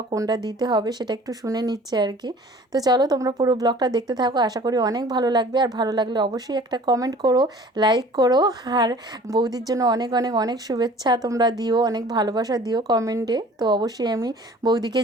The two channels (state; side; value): normal; both; correlation 0.48